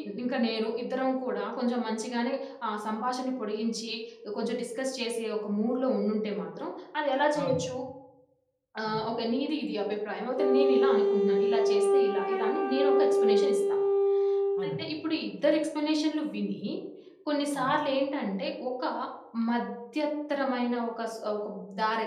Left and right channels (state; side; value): identical; both; correlation 1.00